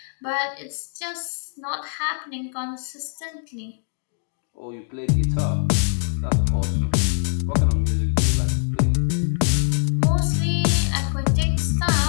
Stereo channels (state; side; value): silent; right; 63 dB below the other